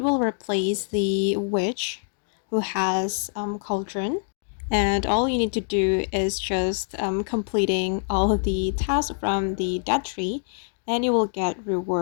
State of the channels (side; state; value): right; silent; 61 dB below the other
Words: will replace the witch who has cauldron, and all you need to do is just completing all of the tasks from the dead tree, and you will get